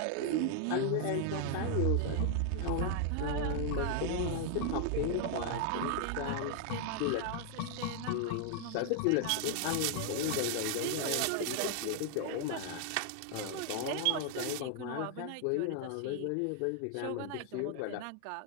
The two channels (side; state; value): both; different; correlation 0.00